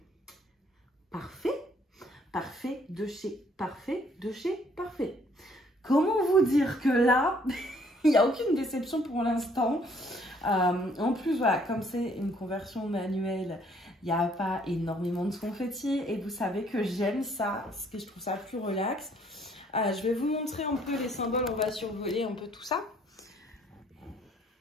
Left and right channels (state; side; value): normal; both; correlation 0.63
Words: parfaits, parfait de chez parfait, de chez parfait. Comment vous dire que là, il n'y a aucune déception pour l'instant. En plus, voilà, comme c'est une conversion manuelle, il n'y a pas énormément de confetti. Et vous savez que j'aime ça, parce que je trouve ça plus relax. Je vais vous montrer un peu les symboles, on va survoler un peu tout ça.